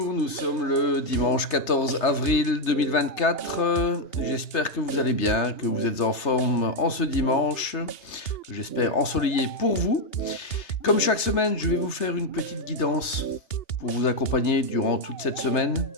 nous sommes le dimanche 14 avril 2024. J'espère que vous allez bien, que vous êtes en forme en ce dimanche, que j'espère ensoleillé pour vous. Comme chaque semaine, je vais vous faire une petite guidance pour vous accompagner durant toute cette semaine.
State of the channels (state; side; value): late; right; 3.3 ms